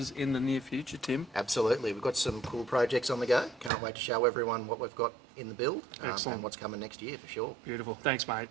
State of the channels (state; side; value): drops out; left; at 3.7 s